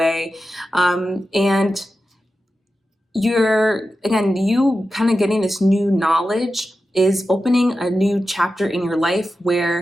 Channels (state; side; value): normal; both; correlation 0.92